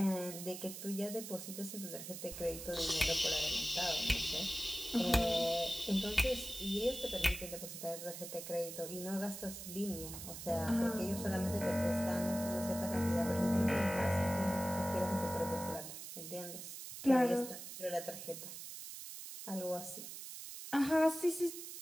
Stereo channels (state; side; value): noise; right; hiss, 10 dB below the sound